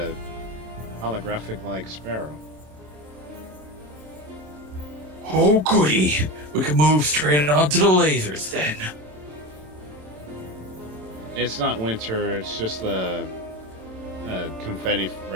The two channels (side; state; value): left; late; 27 ms